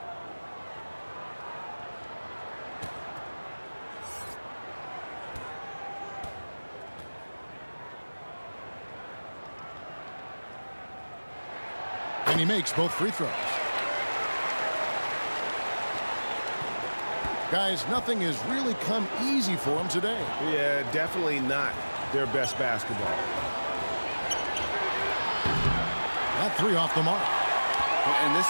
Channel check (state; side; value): inverted; both; correlation -1.00